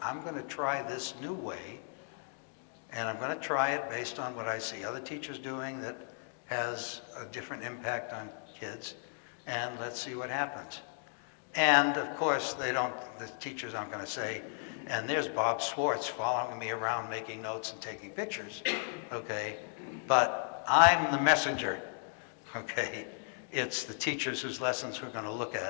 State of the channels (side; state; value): right; silent; 54 dB below the other